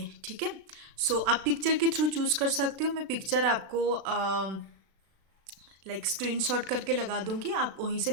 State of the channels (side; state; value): left; late; 36 ms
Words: ठीक है, सो आप पिक्चर के थ्रू चूज कर सकते हो। मैं पिक्चर आपको स्क्रीनशॉट करके लगा दूंगी, आप वहीं से